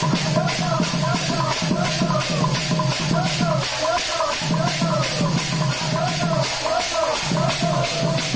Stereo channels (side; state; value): right; noise; rumble, 16 dB below the sound